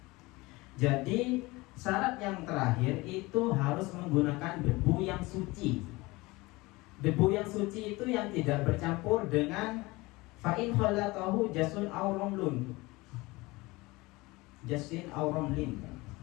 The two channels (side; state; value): right; quieter; 22.2 dB